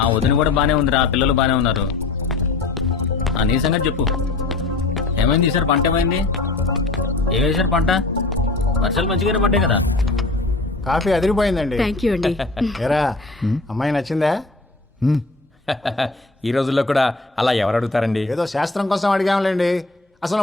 వదిన కూడా బానే ఉందిరా. పిల్లలు బానే ఉన్నారు. నీ సంగతి చెప్పు. ఏమైంది ఈసారి? పంట ఏమైంది? ఏం వేసారు పంట? వర్షాలు మంచిగానే పడ్డాయి కదా. కాఫీ అదిరిపోయిందండి. థ్యాంక్ యూ అండి. ఏరా అమ్మాయి నచ్చిందా? ఈ రోజుల్లో కూడా అలా ఎవరు అడుగుతారండి? ఏదో శాస్త్రం కోసం అడిగాంలేండి.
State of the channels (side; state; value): right; quieter; 3.4 dB